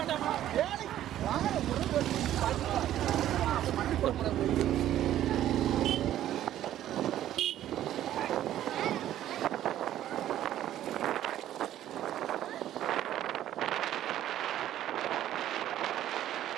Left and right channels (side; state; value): left; quieter; 12.3 dB